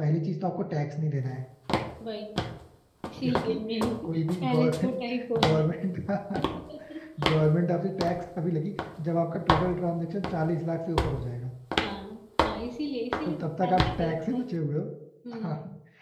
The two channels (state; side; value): identical; both; correlation 1.00